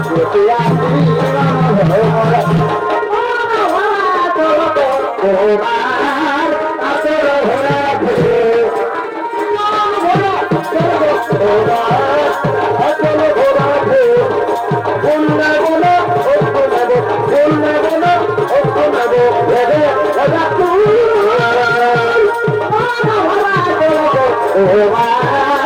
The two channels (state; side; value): identical; both; correlation 1.00